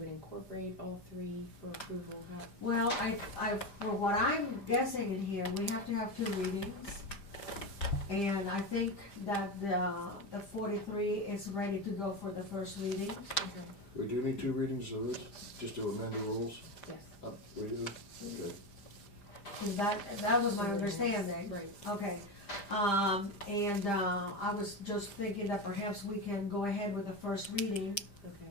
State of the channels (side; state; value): right; late; 5.0 ms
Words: incorporate all 3 for approval? Well, for what I'm guessing in here, we have to have 2 readings. And I think that the 43 is ready to go for the first reading. Okay, We do need 2 readings of this, just to amend the rules? yes. We do? Okay. That was my understanding. Right. Okay, I was just thinking that perhaps we can go ahead with the first reading Okay.